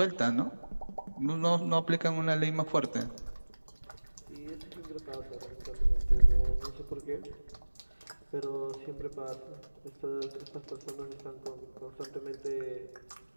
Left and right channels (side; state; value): both; inverted; correlation -1.00